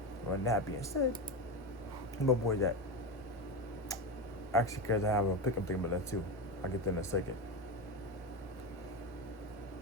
Well, that being said, my boy that actually, because I have a pick, I'm thinking about that too. I'll get that in a second.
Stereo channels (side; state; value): both; normal; correlation 0.17